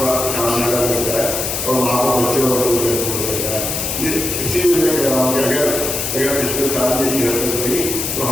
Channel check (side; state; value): left; noise; hiss, 2 dB below the sound